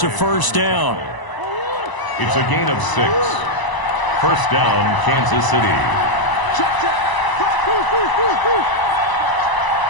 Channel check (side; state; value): right; late; 1.0 ms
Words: a first down. It's a gain of 6. First down, Kansas City.